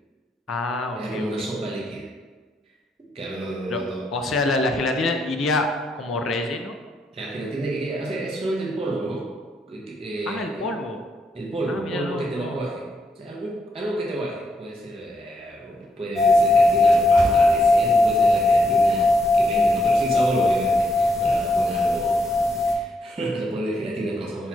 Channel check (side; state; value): both; normal; correlation 0.77